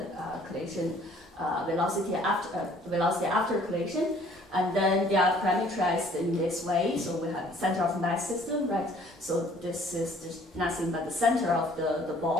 collision velocity after collision. And then they are parameterized in this way. So we have center of mass system, right? So this is just nothing but the center of the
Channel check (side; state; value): both; normal; correlation 0.57